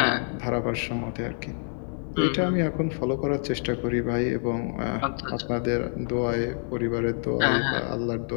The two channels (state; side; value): silent; right; 60 dB below the other